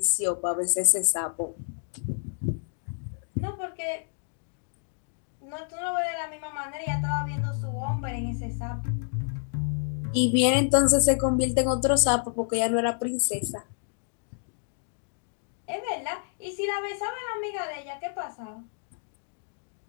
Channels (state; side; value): silent; right; digital silence